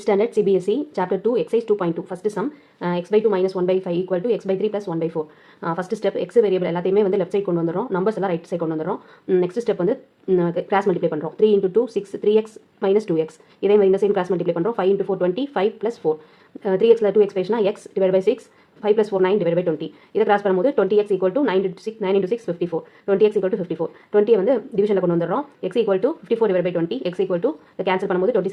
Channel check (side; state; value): both; identical; correlation 1.00